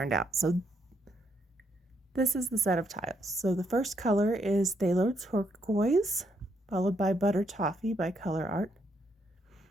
out. So this is the set of tiles. So the first color is Phthalo Turquoise, followed by Butter Toffee by Colourarte.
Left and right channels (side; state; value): both; normal; correlation 0.75